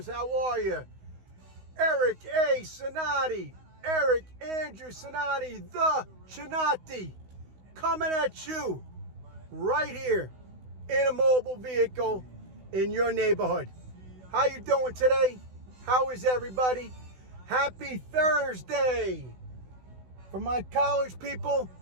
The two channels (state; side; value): late; left; 16 ms